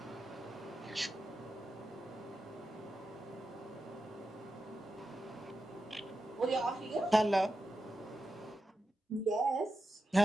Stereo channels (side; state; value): both; normal; correlation 0.90